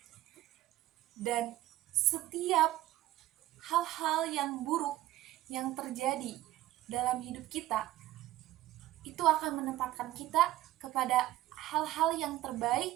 Dan setiap hal-hal yang buruk yang terjadi dalam hidup kita, itu akan menempatkan kita kepada hal-hal yang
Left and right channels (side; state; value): left; quieter; 15.3 dB